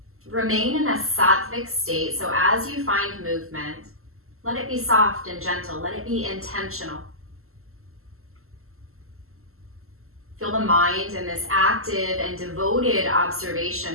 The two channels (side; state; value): left; late; 0.62 ms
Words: Remain in a sattvic state, so as you find movement, let it be soft and gentle, let it be intentional. Feel the mind in this active and devoted